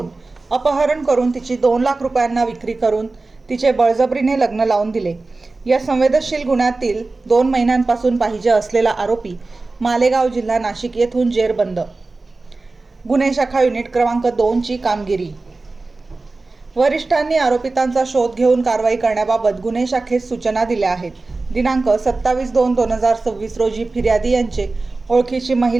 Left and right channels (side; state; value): left; quieter; 3.5 dB